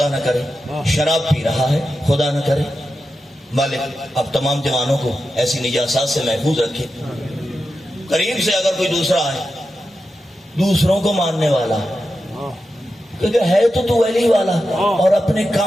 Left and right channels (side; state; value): both; normal; correlation 0.90